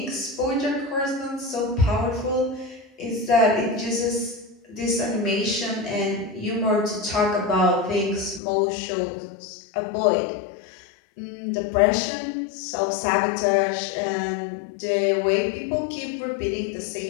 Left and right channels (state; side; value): drops out; right; at 8.4 s